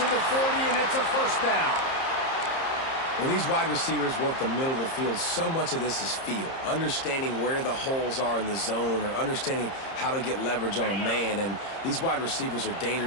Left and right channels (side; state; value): right; late; 30 ms